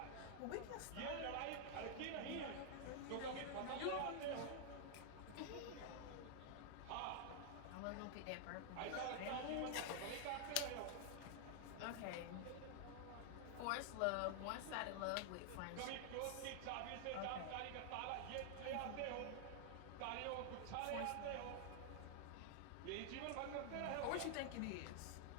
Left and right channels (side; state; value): both; different; correlation 0.00